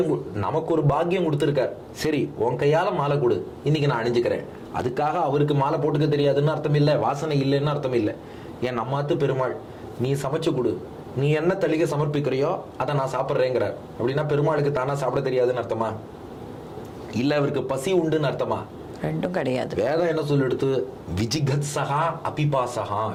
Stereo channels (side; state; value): both; identical; correlation 1.00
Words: நமக்கு ஒரு பாக்கியம் கொடுத்திருக்கார். சரி, உன் கையால மாலை கொடு, இன்னைக்கு நான் அணிஞ்சுக்கிறேன். அதுக்காக அவருக்கு மாலை போட்டுக்க தெரியாதுன்னு அர்த்தம் இல்லை, வாசனை இல்லைன்னு அர்த்தம் இல்லை. ஏன் நம்மாத்து பெருமாள், நீ சமைச்சு கொடு, நீ என்ன தளிகை சமர்ப்பிக்கிறியோ அதை நான் சாப்பிட்றேங்கிறார். அப்படின்னா பெருமாளுக்கு தானா சாப்பிட தெரியாதுன்னு அர்த்தமா? இல்ல அவருக்கு பசி உண்டுன்னு அர்த்தமா? ரெண்டும் கிடையாது. வேதம் என்ன சொல்லிடுத்து? விஜிகத் சகா அபிபாசகா.